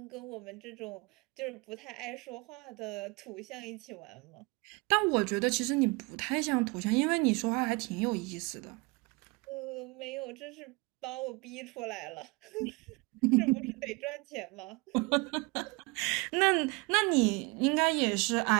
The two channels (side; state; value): left; quieter; 27.1 dB